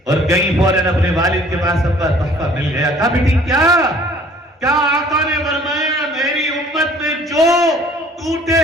اور گئی فوراً اپنے والد کے پاس. ابا تحفہ مل گیا. کہا بیٹی کیا آقا نے فرمایا میری امت میں جو ٹوٹے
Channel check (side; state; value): both; normal; correlation 0.54